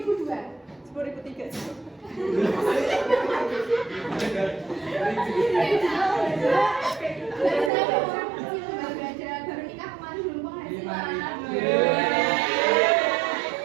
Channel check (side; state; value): left; drops out; at 7.7 s